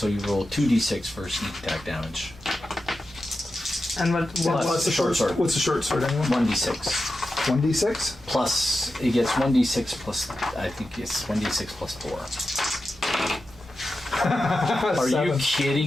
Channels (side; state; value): both; normal; correlation 0.91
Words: you roll 2d6 for sneak attack damage. And what Plus the short sword. What's the short sword anyway? 1d6. 1d6? Plus, it gets 1d6 plus, I think it's 1d6 plus 4. Are you 7. kidding